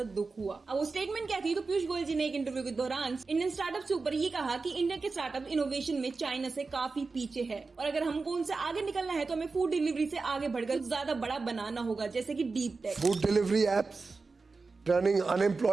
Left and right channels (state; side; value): quieter; left; 4.1 dB